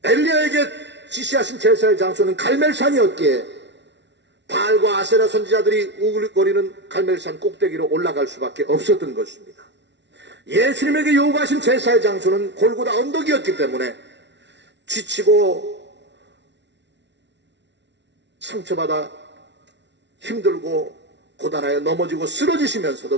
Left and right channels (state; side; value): late; left; 0.51 ms